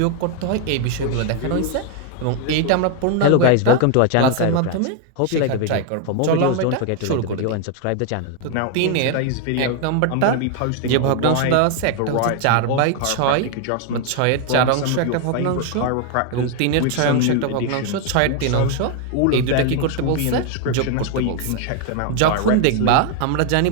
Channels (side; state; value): both; different; correlation 0.01